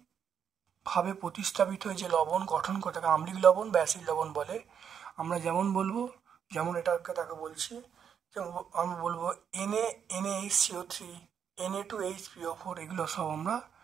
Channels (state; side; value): quieter; left; 7.8 dB